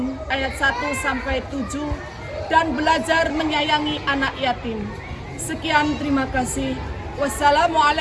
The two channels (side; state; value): both; identical; correlation 1.00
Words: ayat 1-7 dan belajar menyayangi anak yatim. Sekian, terima kasih.